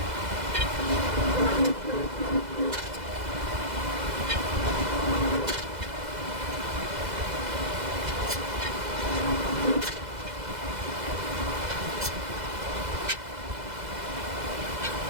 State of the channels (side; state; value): left; late; 2.0 ms